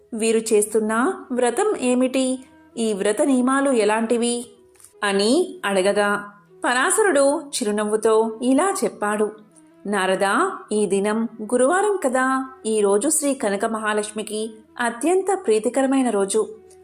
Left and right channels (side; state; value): both; identical; correlation 1.00